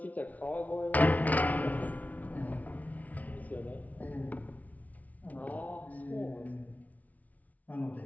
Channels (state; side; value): late; right; 0.073 ms